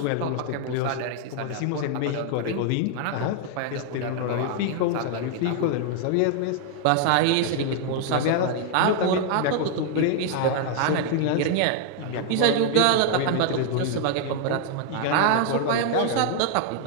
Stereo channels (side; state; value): both; different; correlation 0.00